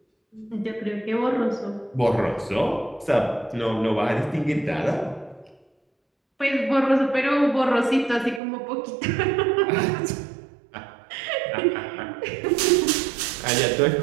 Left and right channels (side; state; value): left; drops out; at 8.4 s